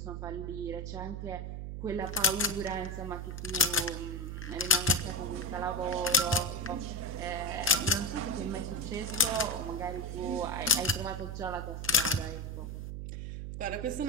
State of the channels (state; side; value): noise; right; hum, 6 dB below the sound